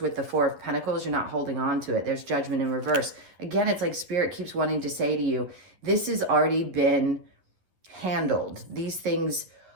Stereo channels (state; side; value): late; left; 11 ms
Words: the Four of Pentacles, you're not holding on to it. There's Judgment in reverse. Again, it's like Spirit keeps wanting to say to you, this has already been handled. These things